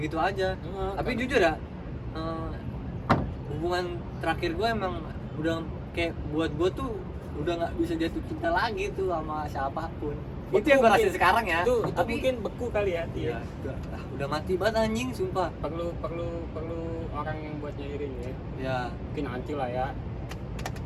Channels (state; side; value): identical; both; correlation 1.00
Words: aja. Tapi kan. jujur ya, hubungan terakhir gua emang udah kayak buat gua tuh udah nggak bisa jatuh cinta lagi tuh sama siapapun. Itu yang gua rasain sekarang ya. Itu Tapi mungkin beku kali ya. iya, udah mati banget anjing sumpah. Perlu orang yang buat nyairin ya. Ya, Mungkin nanti lah ya.